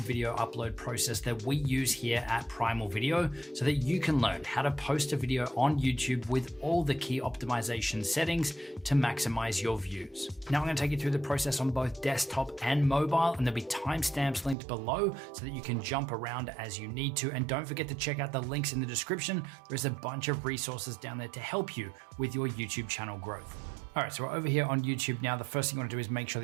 video upload process that we use here at Primal Video so that you can learn how to post a video on YouTube with all the key optimization settings to maximize your views. Now I'm going to take you through the process on both desktop and mobile, and there'll be timestamps linked below so that you can jump around as you need to. And don't forget to check out the links in the description. There's a bunch of resources down there to help you with your YouTube channel growth. All right, so we're over here on YouTube now. The first thing you want to do is make sure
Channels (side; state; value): left; drops out; at 14.6 s